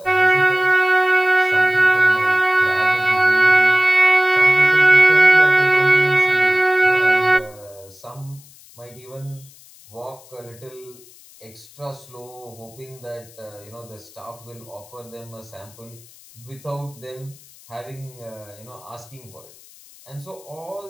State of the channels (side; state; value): left; noise; hiss, 24 dB below the sound